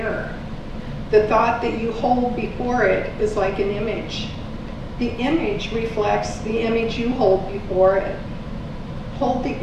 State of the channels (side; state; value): both; identical; correlation 1.00